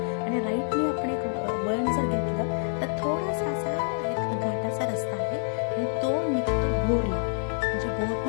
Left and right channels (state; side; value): silent; right; digital silence